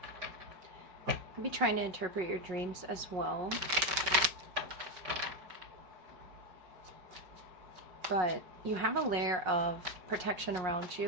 Could be trying to interpret your dreams as well. But you have a layer of protection around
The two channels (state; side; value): late; left; 5.5 ms